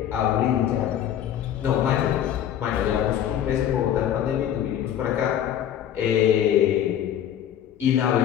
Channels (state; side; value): quieter; right; 10.3 dB